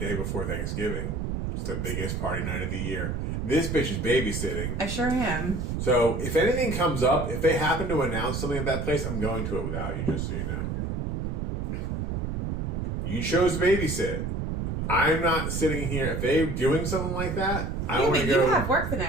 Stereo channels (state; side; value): noise; right; rumble, 2 dB below the sound